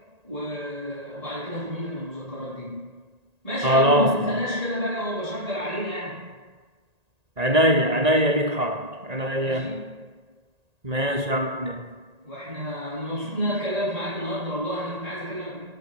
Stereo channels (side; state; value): left; late; 1.9 ms